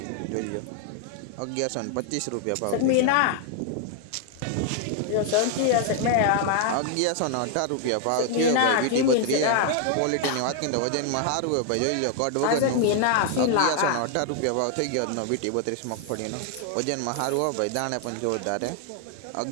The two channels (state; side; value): different; both; correlation 0.00